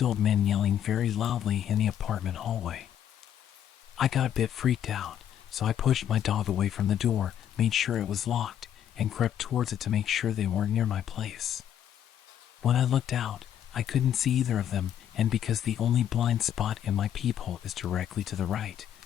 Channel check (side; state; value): right; quieter; 10.0 dB